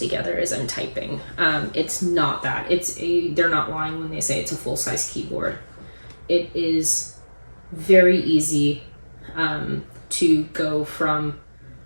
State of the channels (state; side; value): inverted; both; correlation -1.00